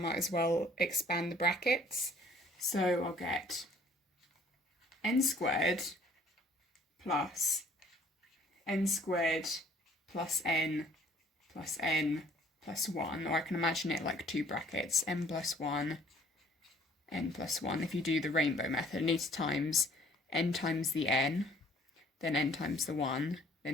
as well expand the brackets. So I'll get n squared plus n squared plus n plus 1, or I can imagine it like two brackets, n plus 1, n plus 1. If you do the rainbow method, it needs times n times the n, then n times the 1,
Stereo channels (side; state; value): both; normal; correlation 0.57